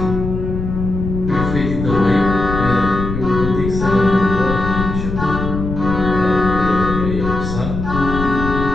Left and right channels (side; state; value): left; noise; rumble, 5 dB below the sound